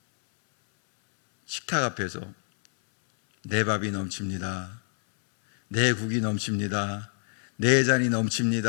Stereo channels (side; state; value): right; silent; 60 dB below the other